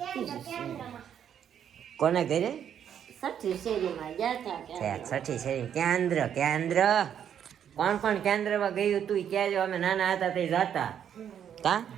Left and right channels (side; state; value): left; quieter; 9.0 dB